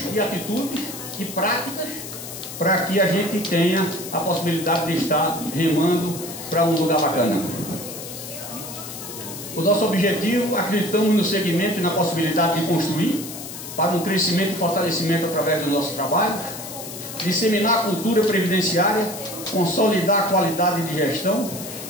e atitudes e práticas, para que a gente tenha a possibilidade de estar remando para um lugar bacana. O nosso objetivo, acreditamos no segmento e na possibilidade de construir para um crescimento e fortalecimento através do nosso trabalho, disseminar a cultura previdenciária, consolidar a qualidade de gestão,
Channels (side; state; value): left; noise; hiss, 10 dB below the sound